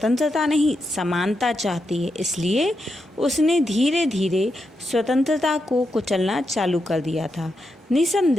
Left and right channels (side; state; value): both; normal; correlation 0.85